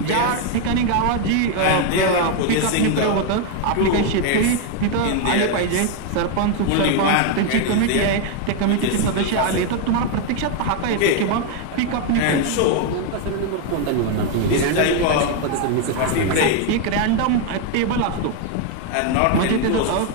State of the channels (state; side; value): different; both; correlation 0.01